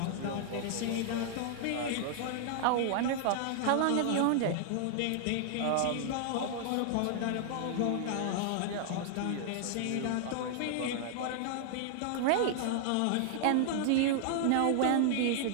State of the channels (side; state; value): both; different; correlation 0.00